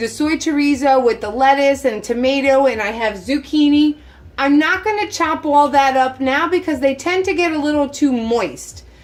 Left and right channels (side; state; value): both; identical; correlation 1.00